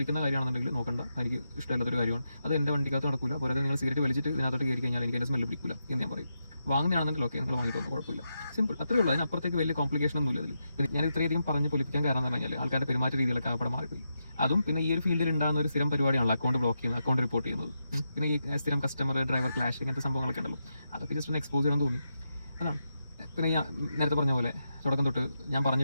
കാര്യമാണെന്നുണ്ടെങ്കിൽ നോക്കണ്ട, എനിക്ക് ഇഷ്ടമില്ലാത്തൊരു കാര്യമാണ്, അത് എൻ്റെ വണ്ടിക്കകത്ത് നടക്കില്ല. പോരാതെ നിങ്ങൾ സിഗരറ്റ് വലിച്ചിട്ട് ഇതിനകത്തോട്ട് കയറി കഴിഞ്ഞാൽ എനിക്ക് എൻ്റെ സ്മെല്ല് പിടിക്കില്ല എന്ന് ഞാൻ പറയും. വാങ്ങുന്നതാണെന്നുണ്ടെങ്കിൽ ഓക്കെ, നിങ്ങൾ വാങ്ങിയിട്ട് വന്നു, കുഴപ്പമില്ല, സിമ്പിൾ, അത്രേ ഉള്ളൂ. അതിനപ്പുറത്തേക്ക് വലിയ കോംപ്ലിക്കേഷൻ ഒന്നും ഇല്ല. പിന്നെ ഞാൻ ഇത്രയധികം പറഞ്ഞ് പൊലിപ്പിക്കാൻ കാരണം എന്ന് പറഞ്ഞാൽ ആൾക്കാരുടെ പെരുമാറ്റ രീതിയിലൊക്കെ അവിടെ മാറിപ്പോയി. അതും പിന്നെ ഈ ഒരു ഫീൽഡിൽ ഉണ്ടാകുന്ന ഒരു സ്ഥിരം പരിപാടിയാണല്ലോ അക്കൗണ്ട് ബ്ലോക്ക് ചെയ്യുന്നത്, അക്കൗണ്ട് റിപ്പോർട്ട് ചെയ്യുന്നത്. പിന്നെ ഈ സ്ഥിരം കസ്റ്റമർ ഡ്രൈവർ ക്ലാഷ് ഇങ്ങനത്തെ സംഭവങ്ങളൊക്കെ ഉണ്ടല്ലോ, അതൊക്കെ ജസ്റ്റ് ഒന്ന് എക്സ്പോസ് ചെയ്യാൻ തോന്നി, അതാണ്. പിന്നെ ഞാൻ നേരത്തെ പറഞ്ഞ പോലെ തുടക്കം തൊട്ട് ഞാൻ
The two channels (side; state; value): both; inverted; correlation -0.85